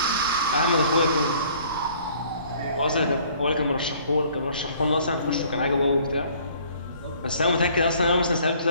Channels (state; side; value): inverted; both; correlation -0.56